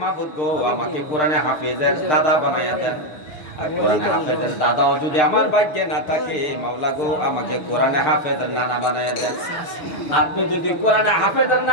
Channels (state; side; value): late; right; 6.6 ms